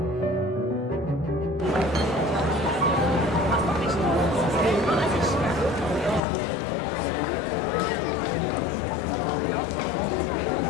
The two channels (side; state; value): right; drops out; at 6.2 s